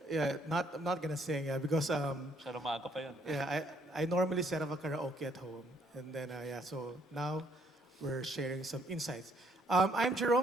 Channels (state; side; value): normal; both; correlation 0.67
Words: Yeah, I'm not gonna sing, yeah, because Masyadong maaga pa yun. yeah, I normally set up a karaoke at home, and then yeah, so now we're sharing some insights. I'm